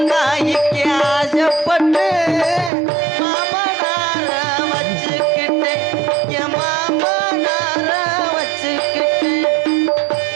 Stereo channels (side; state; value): left; drops out; at 2.7 s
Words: காய்க்கு ஆசைப்பட்டு மாமனார வச்சுக்கிட்டு என் மாமனார வச்சுக்கிட்டு